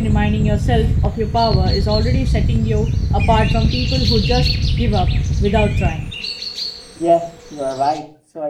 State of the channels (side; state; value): both; identical; correlation 1.00